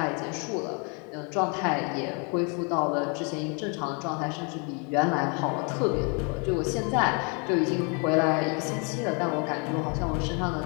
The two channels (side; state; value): right; quieter; 34.9 dB